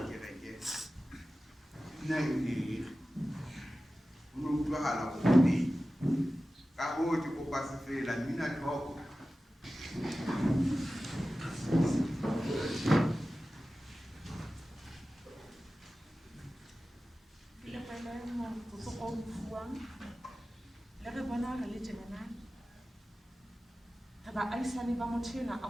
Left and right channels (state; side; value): normal; both; correlation 0.95